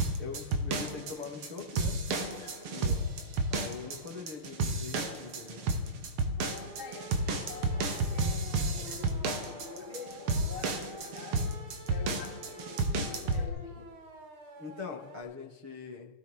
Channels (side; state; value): left; late; 6.5 ms